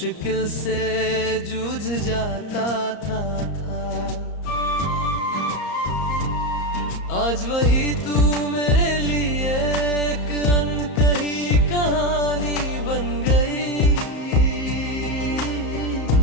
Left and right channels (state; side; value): late; right; 34 ms